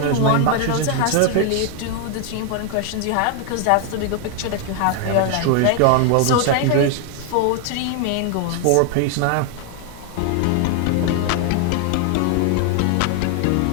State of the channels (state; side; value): different; both; correlation 0.00